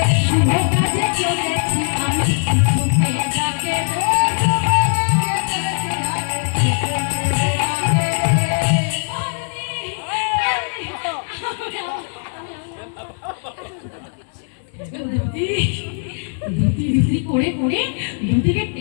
শুভ কাজে চলেছি আমি কিছুকে ডাকে করে করে দুটিকে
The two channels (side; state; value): right; silent; 63 dB below the other